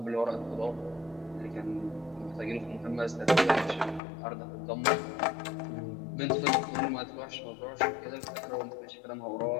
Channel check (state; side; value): drops out; right; at 4.0 s